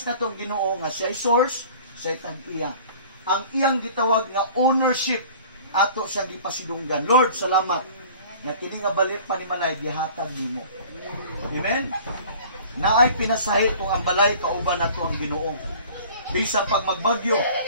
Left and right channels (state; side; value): inverted; both; correlation -0.46